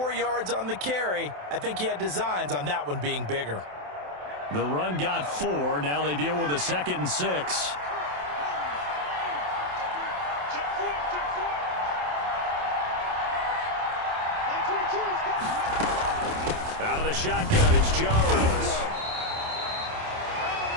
yards on the carry. I think he had designs on that one being bigger. The run got 4. Now they deal with a 2nd and 6. Out of the shotgun, it's Jones.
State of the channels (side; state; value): left; late; 27 ms